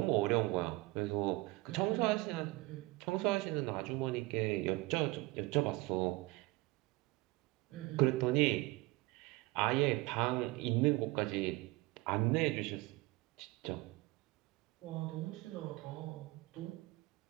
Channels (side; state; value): left; quieter; 21.7 dB